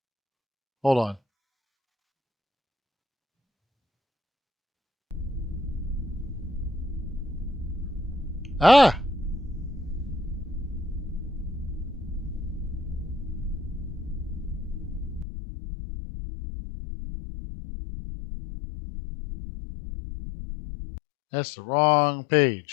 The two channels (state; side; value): drops out; right; at 15.2 s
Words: Hold on. Ah, that's the wrong